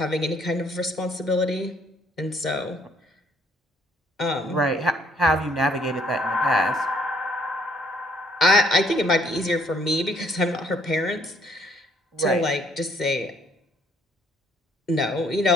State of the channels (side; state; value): both; normal; correlation 0.65